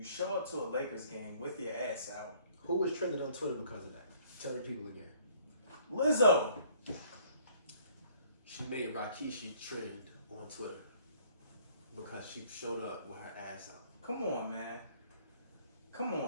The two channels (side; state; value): both; inverted; correlation -0.60